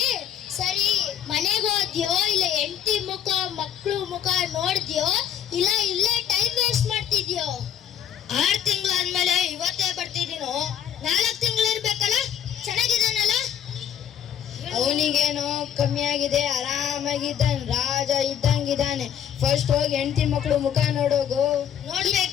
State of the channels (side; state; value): right; quieter; 9.5 dB